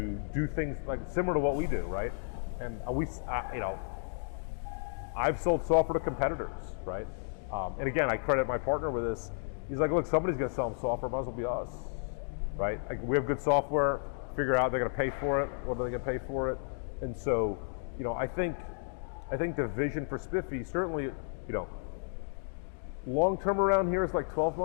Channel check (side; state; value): right; silent; digital silence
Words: do things like similar to what we do, right? And I've sold software to competitors, right? And again, I credit my partner with this. He's like, look, somebody's going to sell them software, might as well be us, right? Like we have good software, figure out they're going to pay for it, what are they going to pay for it? And so, I think the vision for Spiffy, certainly, long-term around here is like 12